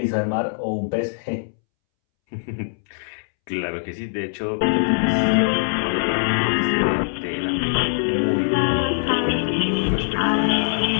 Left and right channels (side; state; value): right; silent; 64 dB below the other